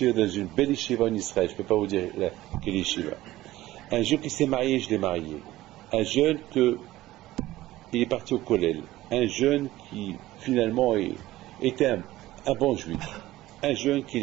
dans une belle yeshiva en Israël, je ne peux pas vous dire quelle yeshiva. Un jeune qui s'est marié, je l'ai marié. Un jeune il est parti au kollel. Un jeune qui finalement était un bon juif. Un jeune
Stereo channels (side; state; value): left; quieter; 16.3 dB